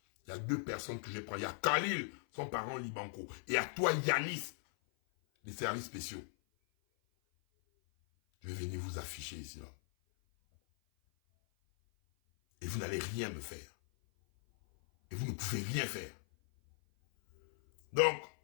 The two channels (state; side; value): silent; right; 52 dB below the other